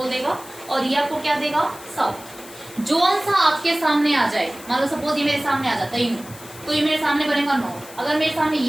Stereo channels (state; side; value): noise; left; hiss, 18 dB below the sound